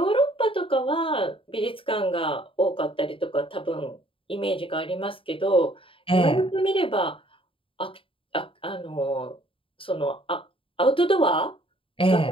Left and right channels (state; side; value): late; right; 0.26 ms